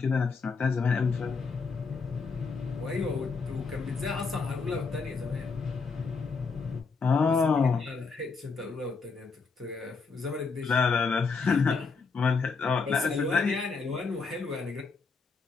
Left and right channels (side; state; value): right; quieter; 4.7 dB